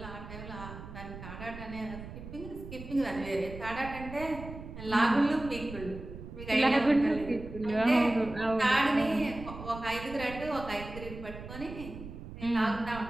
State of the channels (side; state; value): right; noise; rumble, 12 dB below the sound